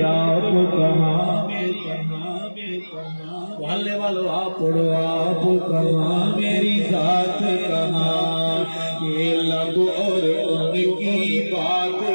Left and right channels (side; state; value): both; inverted; correlation -1.00